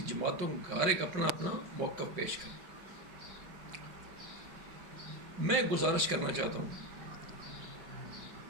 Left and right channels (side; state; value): left; late; 4.9 ms